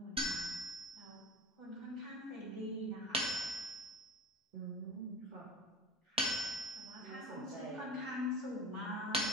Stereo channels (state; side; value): normal; both; correlation 0.36